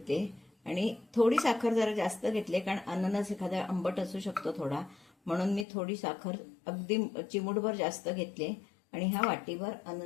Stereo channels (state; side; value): drops out; right; at 5.7 s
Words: आणि थोडी साखर जरा जास्त घेतली कारण अननस एखादा आंबट असू शकतो थोडा, म्हणून मी थोडी साखर अगदी चिमूटभर जास्त घेतली आणि हा वाटीभर